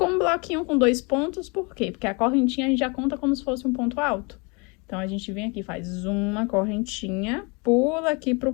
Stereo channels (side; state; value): right; quieter; 30.4 dB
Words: um bloquinho com 2 pontos, por quê? Porque a correntinha a gente já conta como se fosse um ponto alto. Então, a gente vem aqui, faz uma correntinha, pula aqui pro